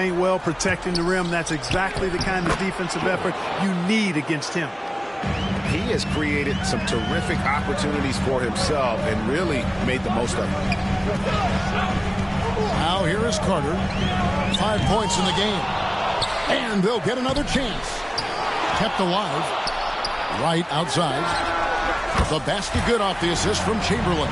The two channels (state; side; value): identical; both; correlation 1.00